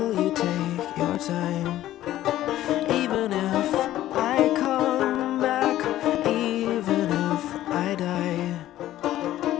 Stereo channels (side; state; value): right; quieter; 13.8 dB